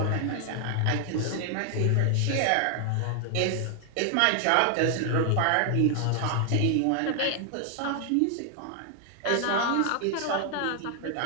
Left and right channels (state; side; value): different; both; correlation 0.00